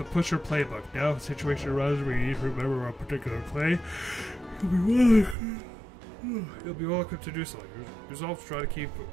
Pusher Playbook. Now, if a situation arises where you need to remember a particular play, you'll be well equipped to do so. Resolve to try to keep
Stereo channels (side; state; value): left; drops out; at 5.4 s